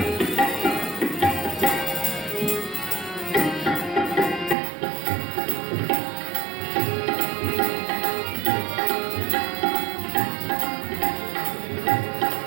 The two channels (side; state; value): left; drops out; at 4.5 s